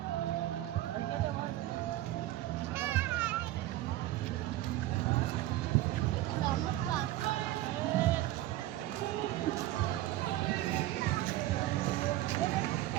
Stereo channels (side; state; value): left; quieter; 15.3 dB